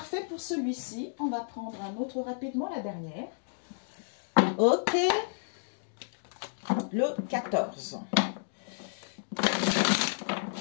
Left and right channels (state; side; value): silent; right; digital silence